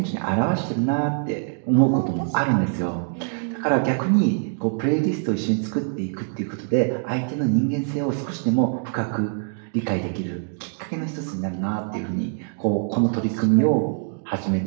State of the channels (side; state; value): left; silent; 58 dB below the other